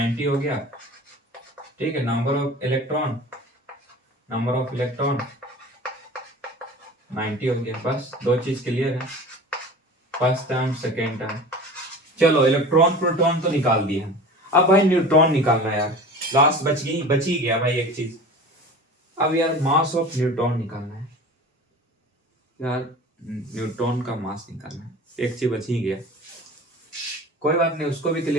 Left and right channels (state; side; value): normal; both; correlation 0.38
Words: हो गया, ठीक है। Number of electron, number of electron 90 हो गया, बस दो चीज क्लियर है, फर्स्ट टर्म सेकेंड टर्म। चलो इलेक्ट्रॉन प्रोटॉन तो निकाल दिए हम, अब भाई न्यूट्रॉन निकालना है यार। लास्ट बच ही गया भाई एक चीज। अब यार मास ऑफ न्यूट्रॉन निकालना है यार, न्यूट्रॉन का मास निकालना है, एक चीज बच ही गया। कोई बात नहीं, उसको भी